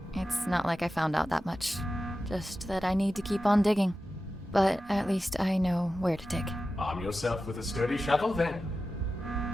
It's not like I found out that much. Just that I need to keep on digging. But at least I know where to dig. Arm yourself with a sturdy shovel, then.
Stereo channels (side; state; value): both; normal; correlation 0.93